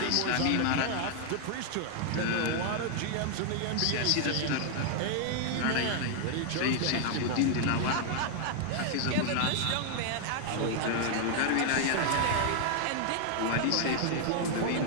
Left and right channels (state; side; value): different; both; correlation 0.00